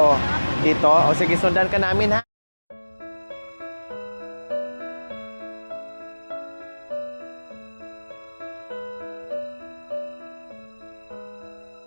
Dito? O sige, sundan ka namin ha?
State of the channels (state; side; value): inverted; both; correlation -1.00